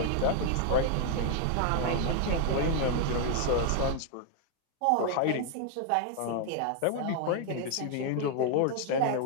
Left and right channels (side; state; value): both; different; correlation 0.00